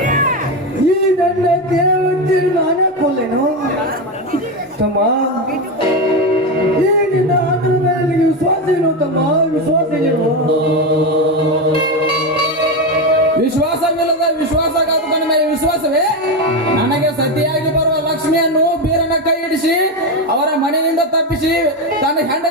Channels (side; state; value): both; normal; correlation 0.14